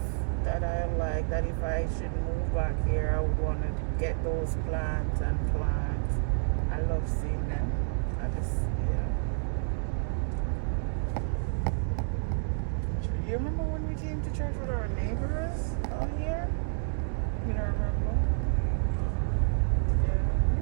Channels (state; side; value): silent; left; digital silence